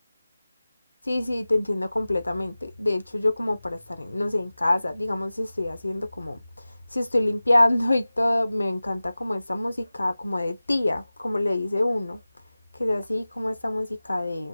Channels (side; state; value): both; inverted; correlation -0.97